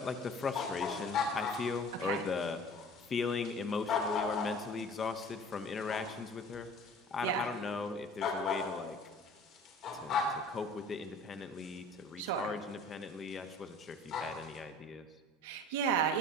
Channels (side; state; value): both; normal; correlation 0.46